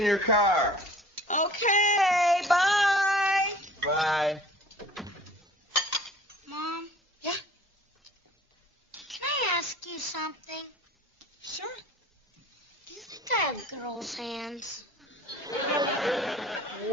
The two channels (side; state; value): both; normal; correlation 0.47